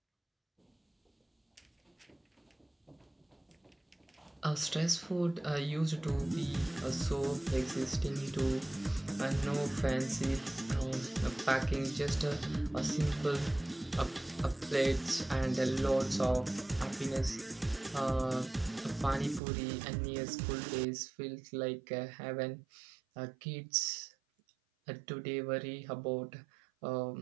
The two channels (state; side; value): drops out; left; at 19.4 s